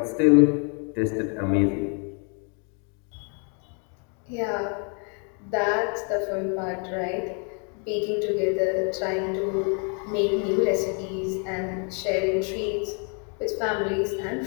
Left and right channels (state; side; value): quieter; right; 39.3 dB